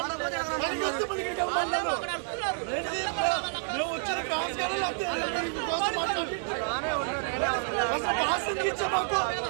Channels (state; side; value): silent; left; 58 dB below the other